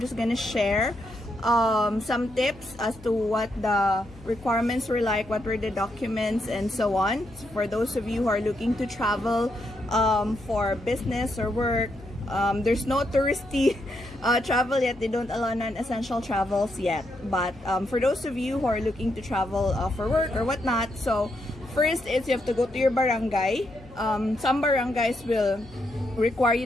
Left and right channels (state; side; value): noise; left; hum, 21 dB below the sound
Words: gonna share some tips as to what the requirements were like, what were the documents and so on. So for those of you who are looking to travel for business or work, there's no touristy travel yet. They don't allow non-essential travels yet. But for those of you who are looking to travel for work or whatnot, so first is you have to go to your barangay. Some barangays will require